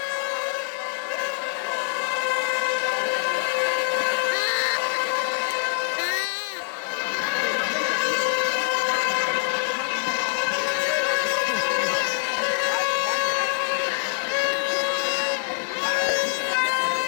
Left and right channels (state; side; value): silent; right; digital silence